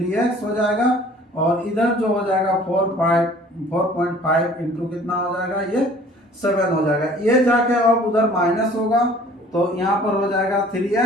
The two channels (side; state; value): both; normal; correlation 0.51